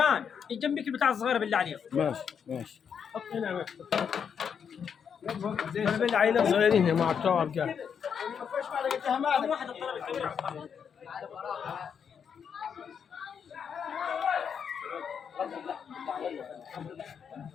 جنبك البتاع الصغيره بالله عليك. ماشي حط هنا. انا بالله عينين صغيرين مع بتوع الرجال. واحد الطلب الكبير.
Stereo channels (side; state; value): right; quieter; 7.2 dB